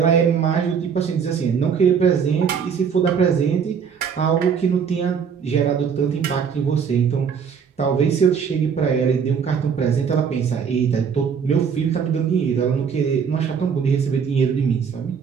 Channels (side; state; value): left; quieter; 6.8 dB